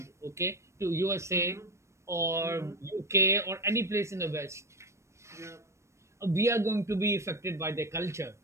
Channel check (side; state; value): left; late; 0.13 ms